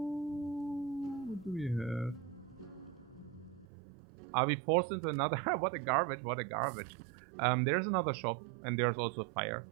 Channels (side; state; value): left; drops out; at 3.7 s